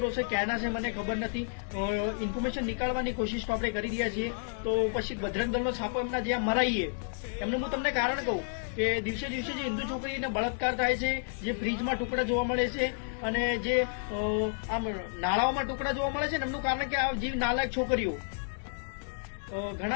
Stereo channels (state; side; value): silent; right; digital silence